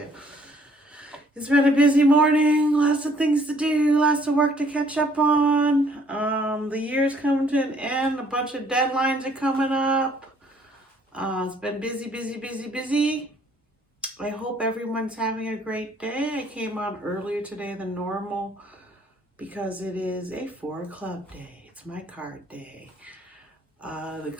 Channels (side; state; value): both; normal; correlation 0.62